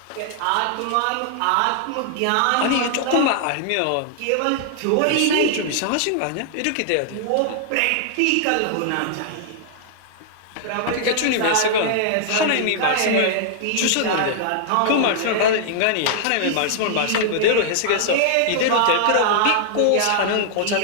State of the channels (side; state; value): both; different; correlation -0.01